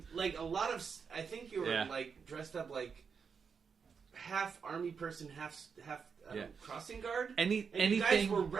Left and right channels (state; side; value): quieter; left; 6.0 dB